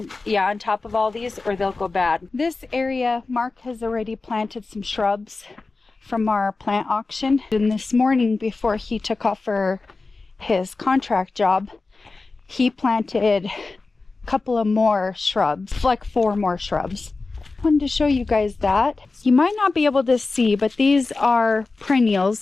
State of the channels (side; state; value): right; quieter; 3.8 dB